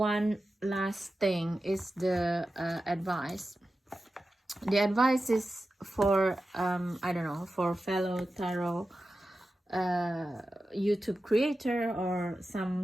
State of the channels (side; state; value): both; normal; correlation 0.92